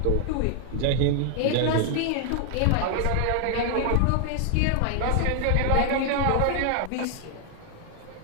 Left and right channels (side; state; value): both; different; correlation 0.00